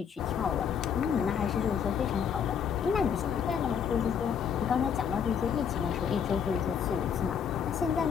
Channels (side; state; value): right; quieter; 7.5 dB